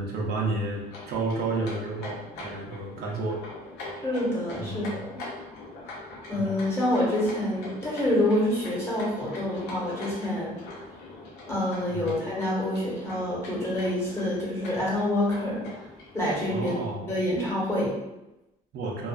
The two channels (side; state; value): both; normal; correlation 0.56